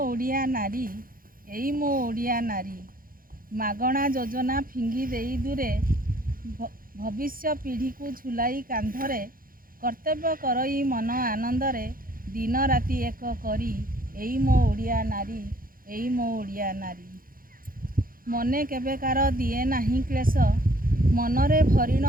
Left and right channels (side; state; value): left; late; 0.41 ms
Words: ओडिया नारी, एई मो ओडिया नारी, मागणा योजना फिंगी देई दूरे, भविष्य पीढ़ी को झुलाई कांधरे, कर्तव्य करई मन आनंदरे, दिन राति एक करी, एई मो ओडिया नारी, एई मो ओडिया नारी। मने केबेकार दिए नाही क्लेश, मनरे भरिण